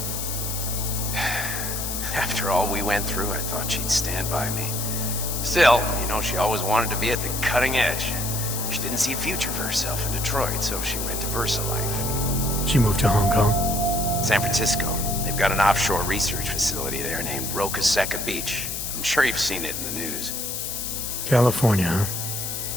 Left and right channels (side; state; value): left; noise; hiss, 4 dB below the sound